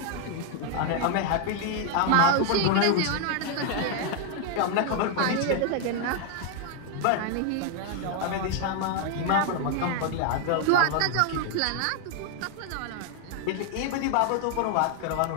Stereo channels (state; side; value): different; both; correlation 0.00